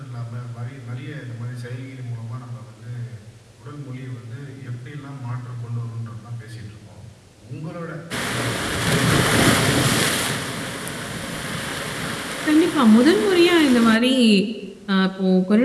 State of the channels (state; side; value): identical; both; correlation 1.00